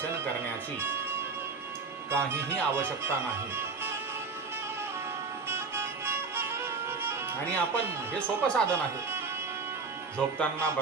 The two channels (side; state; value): left; quieter; 4.7 dB